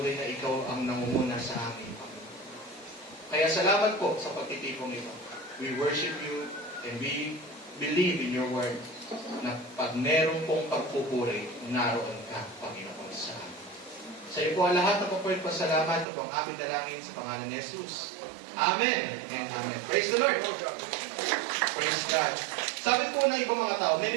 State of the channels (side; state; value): left; drops out; at 16.1 s